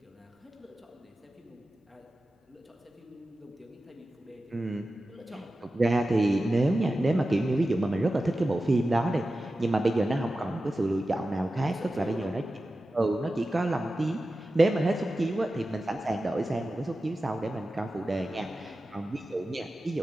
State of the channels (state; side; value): normal; both; correlation 0.93